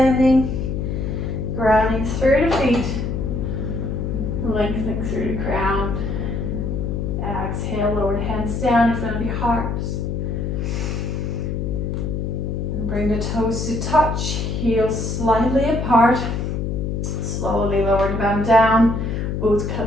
grounding through the feet, lengthening through the crown. Exhale, lower the hands down in front of your heart. And bring the toes to touch, heels slightly apart. Slowly lower the bum down.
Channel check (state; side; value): noise; left; hum, 2 dB below the sound